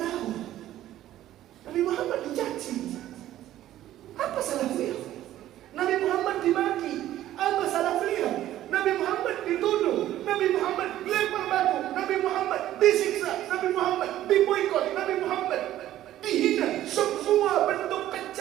Nabi Muhammad dicaci. Apa salah beliau? Nabi Muhammad dimaki. Apa salah beliau? Nabi Muhammad dituduh. Nabi Muhammad dilempar batu. Nabi Muhammad disiksa. Nabi Muhammad diboikot. Nabi Muhammad dihina. Semua bentuk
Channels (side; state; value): left; quieter; 13.3 dB